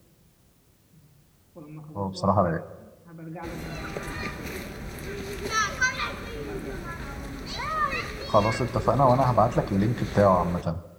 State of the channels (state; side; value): identical; both; correlation 1.00